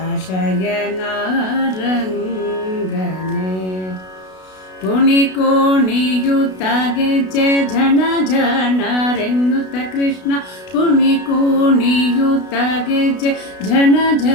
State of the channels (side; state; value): right; late; 32 ms